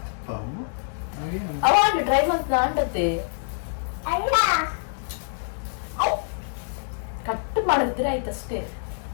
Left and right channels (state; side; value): silent; right; digital silence